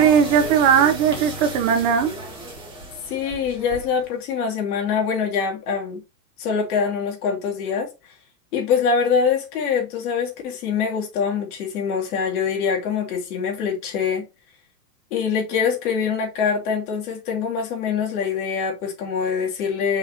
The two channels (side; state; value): both; normal; correlation 0.13